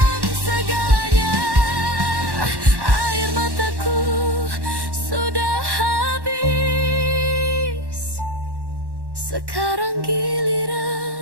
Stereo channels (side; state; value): left; late; 1.1 ms